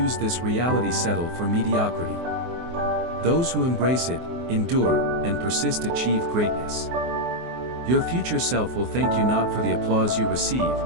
this reality settle for mediocrity. Those who embrace it, endure, and persist achieve greatness. Your future self will thank you not for the applause you receive,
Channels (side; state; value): left; late; 24 ms